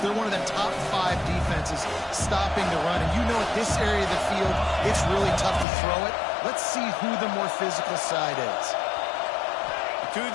They're one of the top 5 defenses stopping the run. And you know at this area of the field, it's really tough to throw it. Let's see who the more physical side is. To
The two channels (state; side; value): drops out; right; at 5.7 s